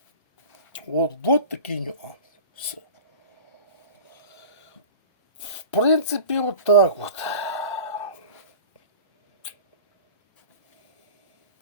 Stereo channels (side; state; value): both; inverted; correlation -0.38